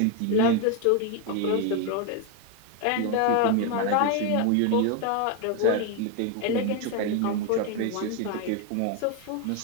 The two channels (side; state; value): both; different; correlation 0.01